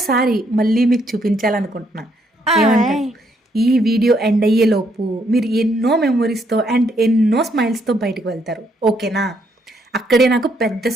మళ్ళీ మీకు చూపించాలనుకుంటున్నా. ఏమంటారు? ఈ వీడియో ఎండ్ అయ్యే లోపు మీరు ఎన్నో మెమొరీస్తో అండ్ ఎన్నో స్మైల్స్తో బయటకు వెళ్తారు. ఓకేనా? అక్కడే నాకు పెద్ద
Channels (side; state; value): both; normal; correlation 0.72